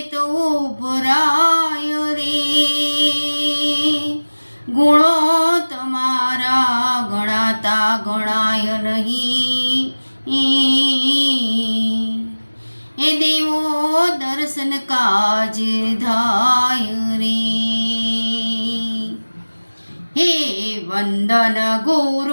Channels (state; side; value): inverted; both; correlation -1.00